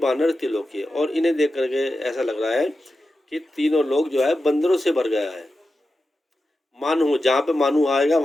तिलोकी, और इन्हें देख करके ऐसा लग रहा है कि तीनों लोग जो है बंदरों से भर गया है। मानहू, जहाँ पे मानू आएगा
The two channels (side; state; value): both; normal; correlation 0.91